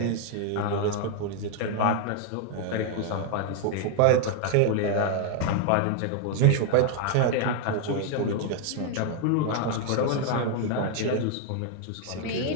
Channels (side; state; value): both; different; correlation 0.00